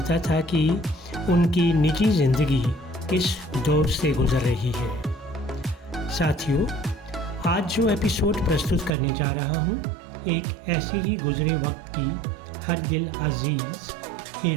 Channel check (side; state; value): left; drops out; at 9.0 s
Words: था कि उनकी निजी ज़िंदगी किस दौर से गुजर रही है। साथियों, आज जो एपिसोड प्रस्तुत करने जा रहा हूँ, एक ऐसी ही गुजरे वक्त की हर दिल अजीज़